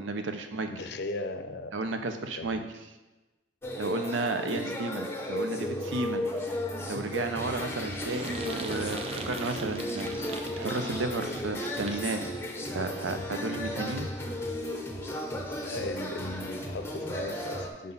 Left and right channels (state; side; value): normal; both; correlation 0.35